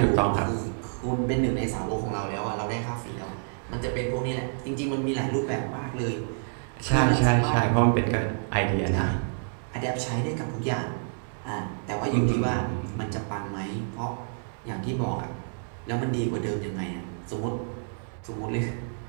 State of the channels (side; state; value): left; silent; digital silence